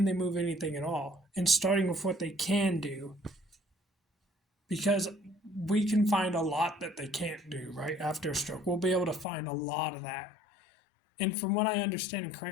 they move anything at all? And starting with what they can do. Because we can find a lot that they can't do, right, after a stroke. We'll be able to find a lot of that. And from what I understand, and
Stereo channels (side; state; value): right; drops out; at 9.2 s